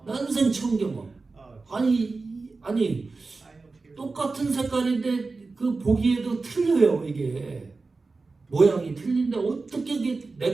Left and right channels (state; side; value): quieter; left; 3.9 dB